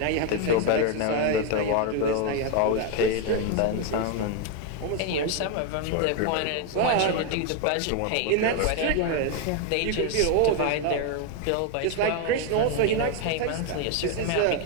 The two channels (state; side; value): different; both; correlation 0.01